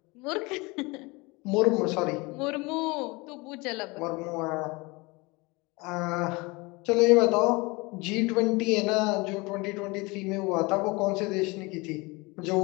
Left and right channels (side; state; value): right; quieter; 25.1 dB